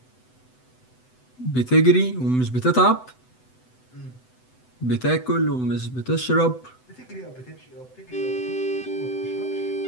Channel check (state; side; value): late; right; 7.9 ms